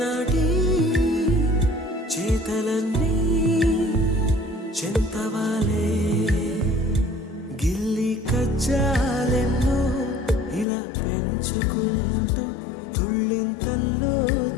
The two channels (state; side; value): drops out; right; at 10.7 s